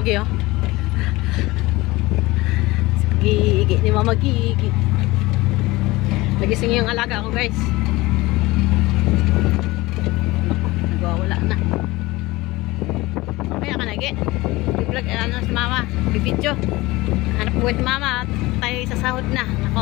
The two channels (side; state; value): right; quieter; 20.6 dB